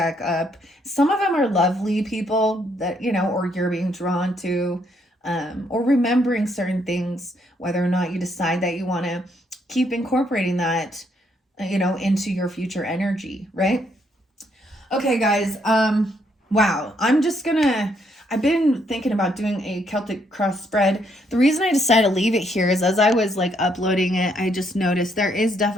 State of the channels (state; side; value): normal; both; correlation 0.72